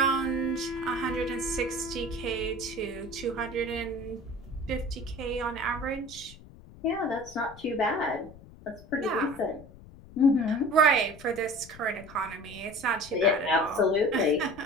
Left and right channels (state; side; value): noise; left; rumble, 19 dB below the sound